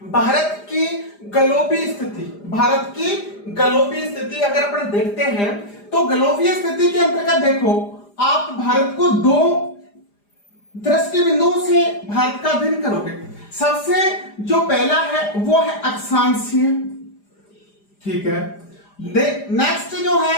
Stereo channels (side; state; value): right; late; 4.9 ms